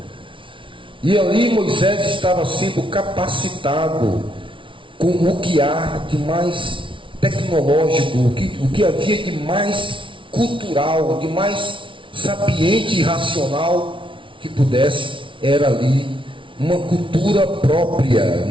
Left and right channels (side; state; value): left; late; 0.25 ms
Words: E ali Moisés estava sendo capacitado com o que há de mais tecnológico, o que havia de mais cultural, de mais sapiente e racional que pudesse. Era ali uma cultura própria,